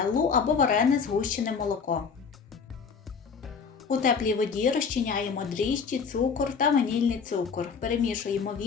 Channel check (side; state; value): right; quieter; 5.8 dB